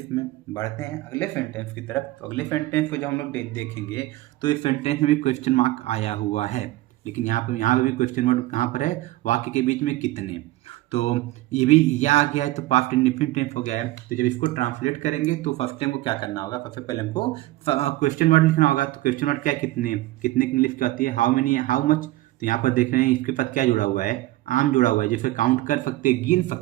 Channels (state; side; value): quieter; left; 17.4 dB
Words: में। बढ़ते हैं अगले सेंटेंस की तरफ। तो अगले सेंटेंस को जब हम लोग देखेंगे तो इस सेंटेंस में भी क्वेश्चन मार्क आया हुआ है, लेकिन यहाँ पर भी क्वेश्चन मार्क कहाँ पर है? वाक्य के बीच में कितने। तो ये भी या आ गया है, तो पास्ट इंडेफिनिट टेंस हो गया है। तो जब इसको ट्रांसलेट करेंगे तो फर्स्ट टाइम को क्या करना होगा? सबसे पहले हमको क्वेश्चन वर्ड लिखना होगा। तो क्वेश्चन वर्ड क्या है? कितने। कितने की इंग्लिश क्या होती है? How many, how much. तो यहाँ पर देख रहे हैं इसके साथ क्या जुड़ा हुआ है? आम जुड़ा हुआ है, जैसे काउंट कर सकते हैं, गिन